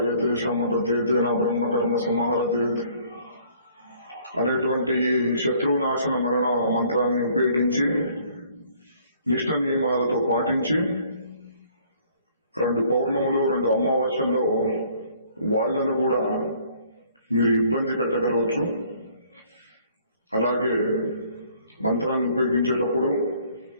శమతేతే నా బ్రహ్మకర్మ సమారతే అనేటువంటి శత్రు నాశన మరణ మంత్రాన్ని ఉపయోగించి నిష్ఠ నియమాలతో పాటించి 2 పౌర్ణములు 2 అమావాస్యల్లో వాళ్లను కూడా మీరు ఇబ్బంది పెట్టగలవచ్చు. అలాగే మంత్రాన్ని ఉపయోగించేటప్పుడు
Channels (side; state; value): both; inverted; correlation -0.60